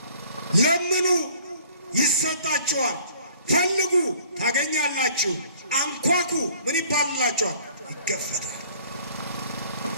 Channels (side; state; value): both; inverted; correlation -0.53